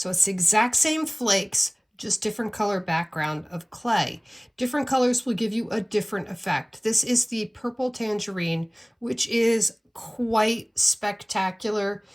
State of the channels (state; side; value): identical; both; correlation 1.00